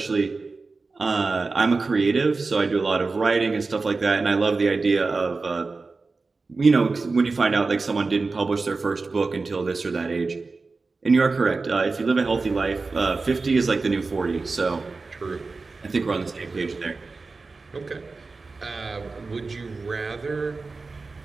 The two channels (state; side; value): quieter; left; 3.9 dB